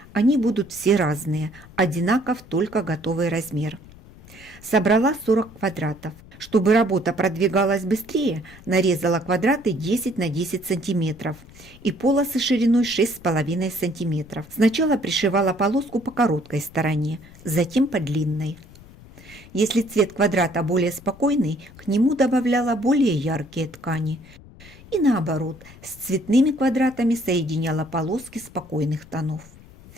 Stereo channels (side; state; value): left; noise; rumble, 21 dB below the sound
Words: Они будут все разные, одинаков только готовый размер. Собрала 40 квадратов. Чтобы работа продвигалась быстрее, нарезала квадраты 10 на 10 сантиметров и полосы шириной 6,5 сантиметров. Сначала пришивала полоску по короткой стороне, затем по длинной. Если цвет квадрата более спокойный, к нему добавляла более яркие ткани. И наоборот, с цветными квадратами соединяла полоски спокойных тонов.